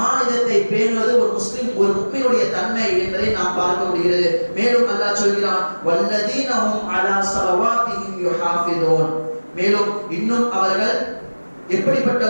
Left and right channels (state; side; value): inverted; both; correlation -1.00